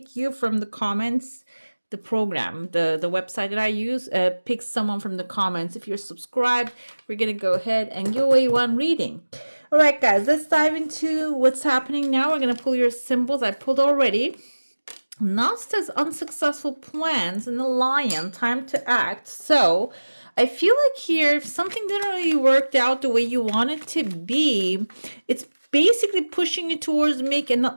you from the comments. The program, the website that I use, picks someone from the comments. If you're subscribed, we're gonna go ahead and give away one reading. All right, guys, let's dive into what's happening now. We're gonna pull your symbols. I pulled already. Now says unsuccessful plans and the lion, time to act. So I feel like here, if something didn't really work out the way you want it to be, it's basically pushing you towards making,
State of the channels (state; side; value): inverted; both; correlation -1.00